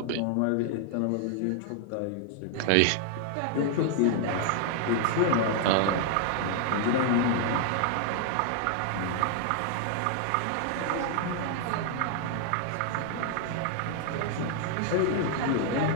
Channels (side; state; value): both; different; correlation 0.00